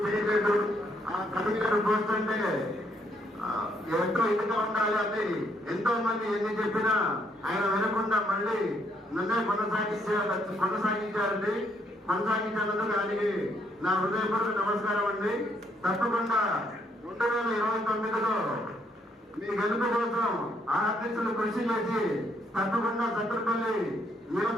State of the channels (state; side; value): normal; both; correlation 0.71